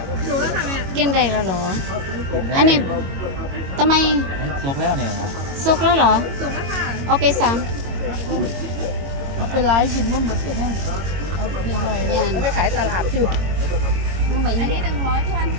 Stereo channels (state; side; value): late; left; 22 ms